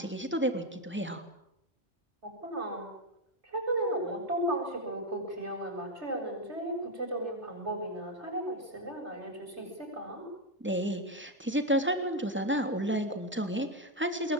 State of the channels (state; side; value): normal; both; correlation 0.07